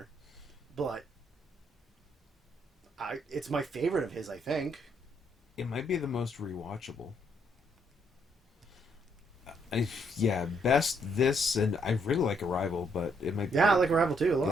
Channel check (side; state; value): both; normal; correlation 0.72